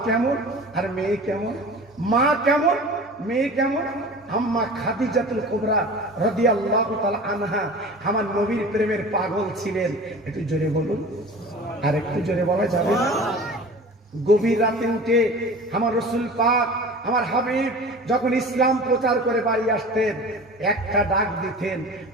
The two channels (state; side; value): normal; both; correlation 0.38